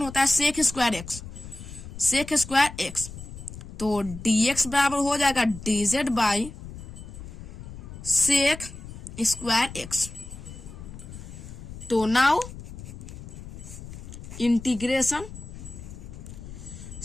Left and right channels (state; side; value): noise; left; rumble, 12 dB below the sound